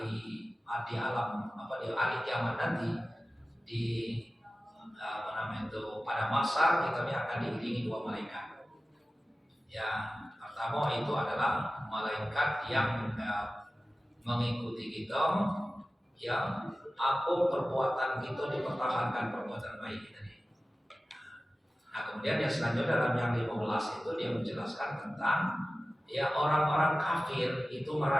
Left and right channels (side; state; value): both; normal; correlation 0.96